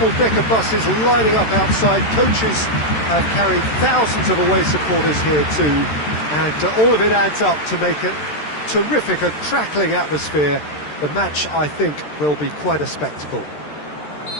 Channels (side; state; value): right; late; 13 ms